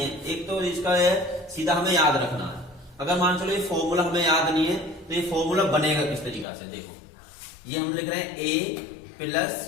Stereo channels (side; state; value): right; drops out; at 6.5 s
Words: एक तो इसका है सीधा हमें याद रखना है। अगर मान चलो ये फॉर्मूला हमें याद नहीं है तो ये फॉर्मूला बनेगा किस तरीका से, देखो ये हम लिख रहे हैं a प्लस